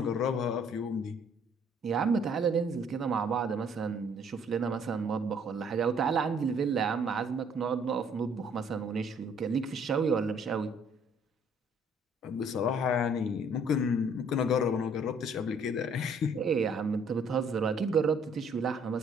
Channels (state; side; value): normal; both; correlation 0.61